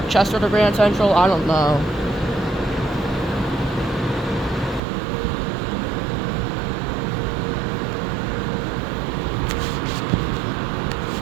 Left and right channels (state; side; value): drops out; left; at 4.8 s